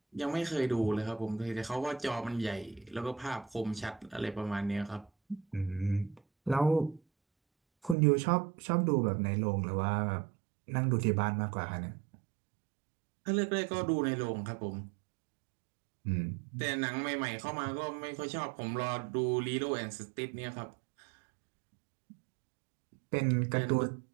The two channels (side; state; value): left; drops out; at 8.0 s